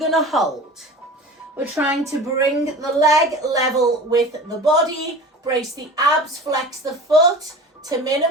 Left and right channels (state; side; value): normal; both; correlation 0.37